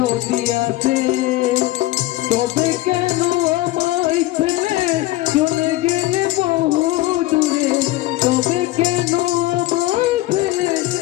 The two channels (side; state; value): right; quieter; 17.1 dB